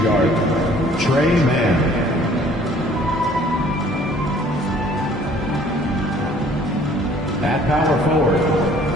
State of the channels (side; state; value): both; normal; correlation 0.56